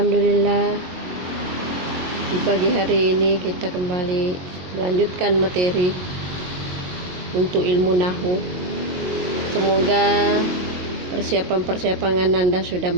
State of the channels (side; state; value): left; late; 22 ms